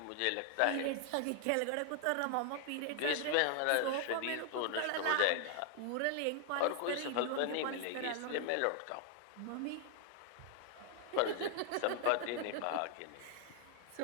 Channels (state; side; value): different; both; correlation 0.00